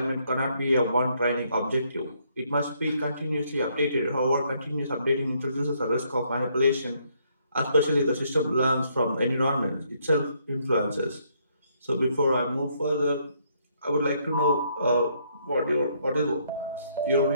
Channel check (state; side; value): inverted; both; correlation -0.70